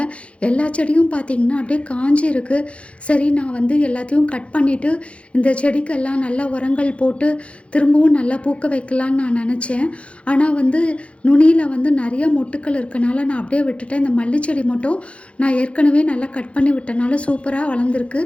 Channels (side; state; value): right; late; 0.061 ms